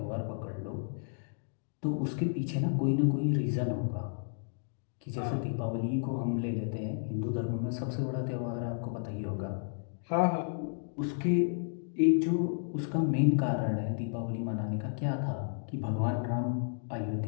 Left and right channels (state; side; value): silent; right; digital silence